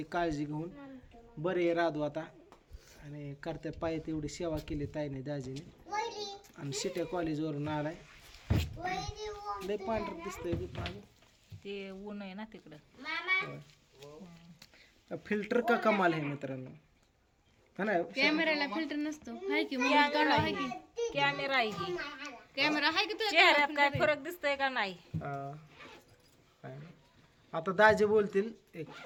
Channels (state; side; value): identical; both; correlation 1.00